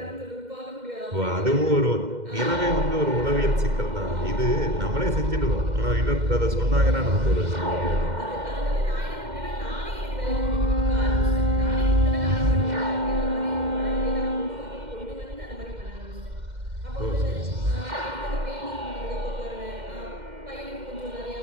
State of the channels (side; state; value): left; late; 2.1 ms